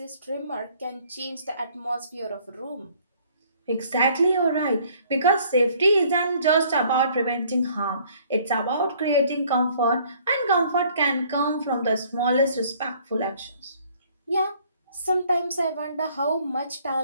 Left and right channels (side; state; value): both; inverted; correlation -0.59